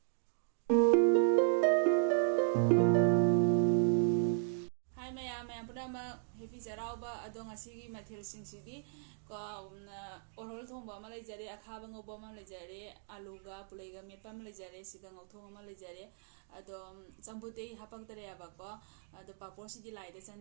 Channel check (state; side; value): silent; left; digital silence